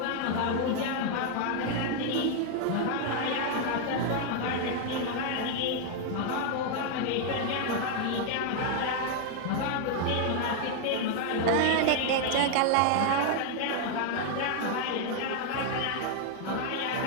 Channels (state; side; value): different; both; correlation 0.00